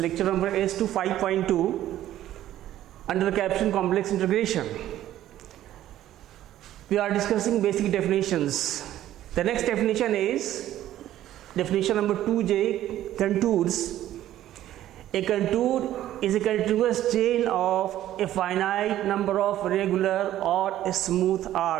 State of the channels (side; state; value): left; quieter; 13.0 dB